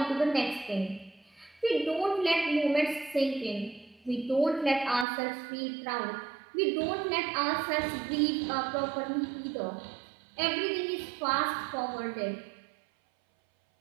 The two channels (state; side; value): drops out; left; at 5.1 s